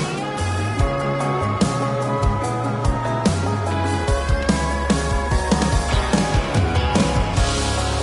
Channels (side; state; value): both; identical; correlation 1.00